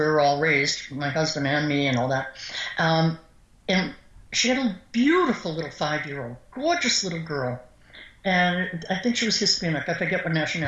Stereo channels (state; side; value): identical; both; correlation 1.00